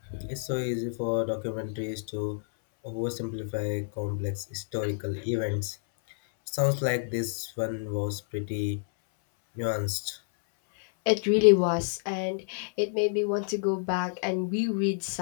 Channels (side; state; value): right; silent; 59 dB below the other